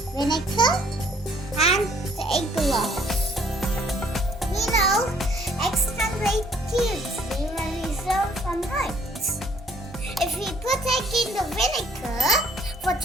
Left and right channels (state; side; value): normal; both; correlation 0.61